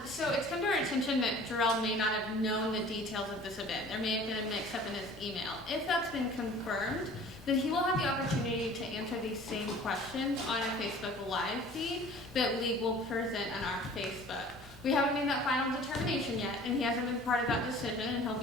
So it's come to our attention that Jarrell may not have known the details of this event. There may have been a mix-up in his email. If that's been confirmed, then he will have the opportunity to answer these same questions on a Facebook Live feed that League will present on our Facebook. We haven't made that final determination yet, and he hasn't been part of that decision, and he'll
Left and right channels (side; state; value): both; normal; correlation 0.47